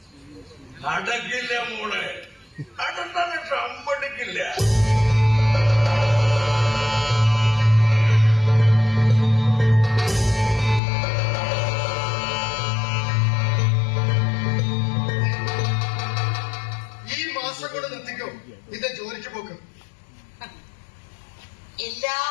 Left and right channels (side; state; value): right; drops out; at 10.8 s